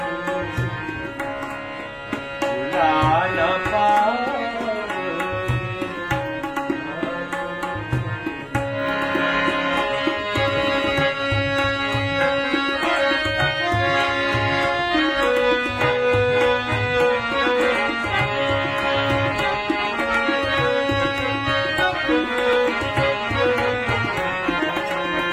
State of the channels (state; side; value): identical; both; correlation 1.00